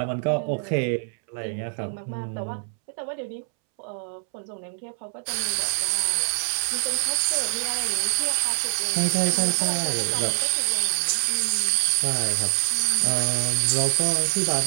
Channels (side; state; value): left; silent; 62 dB below the other